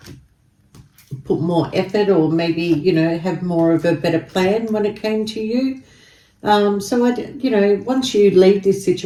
put more effort, or maybe, you know, have more of a better plan when it came to you. So you know, once you leave this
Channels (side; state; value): both; identical; correlation 1.00